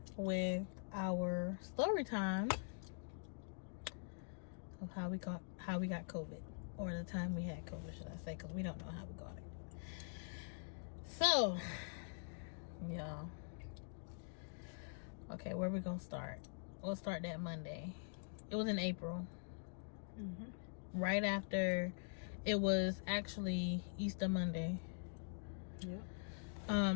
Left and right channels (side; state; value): right; silent; digital silence